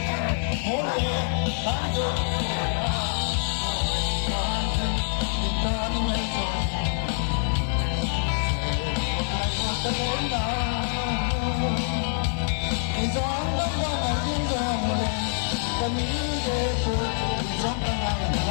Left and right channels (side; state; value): right; silent; 61 dB below the other